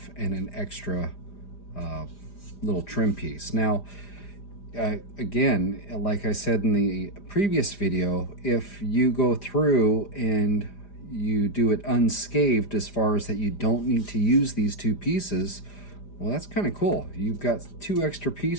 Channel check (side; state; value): right; late; 4.9 ms